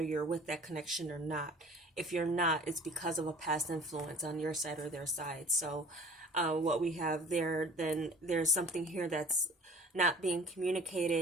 you're with that connection or not. If you're not, it's because of a past influence on your side or their side. So what we have there, then there's something here that's not being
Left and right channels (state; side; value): normal; both; correlation 0.47